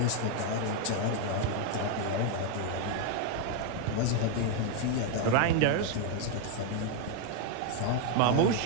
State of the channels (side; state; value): both; different; correlation 0.01